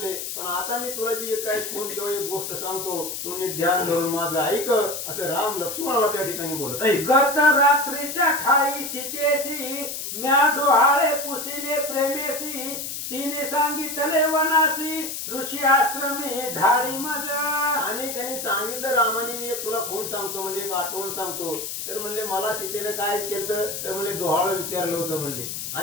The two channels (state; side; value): noise; left; hiss, 6 dB below the sound